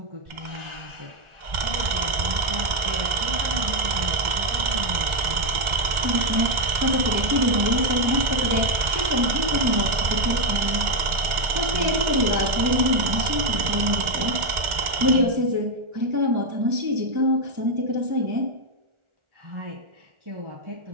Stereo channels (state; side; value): late; left; 1.4 ms